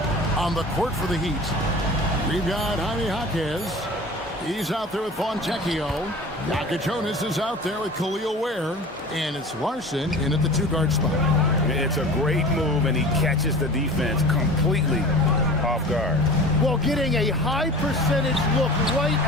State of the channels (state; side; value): normal; both; correlation 0.38